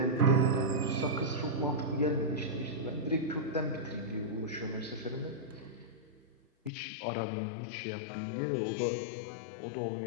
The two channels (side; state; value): right; drops out; at 6.7 s